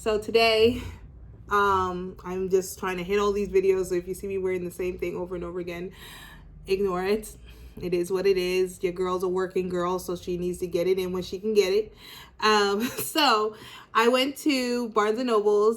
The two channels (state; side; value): identical; both; correlation 1.00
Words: So today, I'm just trying to hit all these videos. So if you see me wearing the same thing over and over again, ignore it. It is what it is. Your girl's a working girl, so she needs to get it in when she can get it. So I went to Barnes and